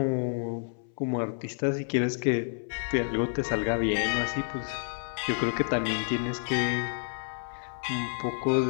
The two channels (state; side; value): silent; right; 58 dB below the other